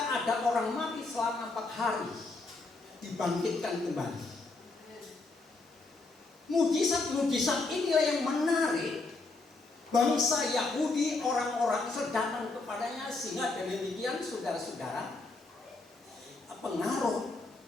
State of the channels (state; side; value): quieter; right; 3.5 dB